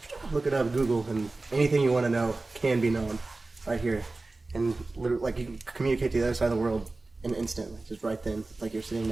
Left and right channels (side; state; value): left; quieter; 3.3 dB